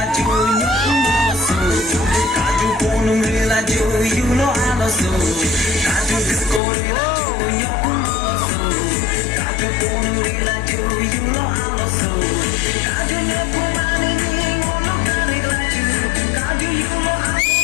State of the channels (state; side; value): drops out; right; at 6.6 s